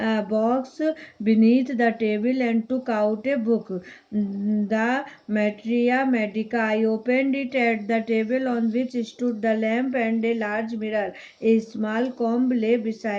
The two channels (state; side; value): identical; both; correlation 1.00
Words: box beneath the table and took out a book, the Materia Medica. I opened it at the table on which stood the lamp and a large mirror. A small comb lay